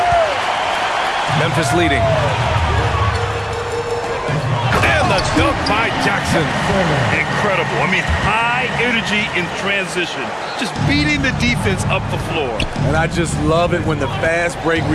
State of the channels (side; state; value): both; identical; correlation 1.00